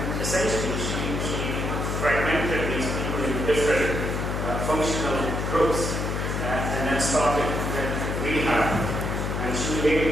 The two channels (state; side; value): noise; left; hum, 1 dB below the sound